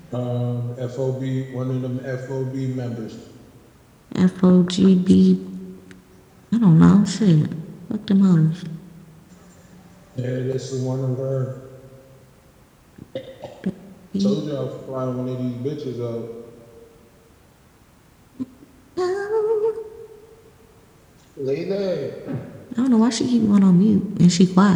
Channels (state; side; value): identical; both; correlation 1.00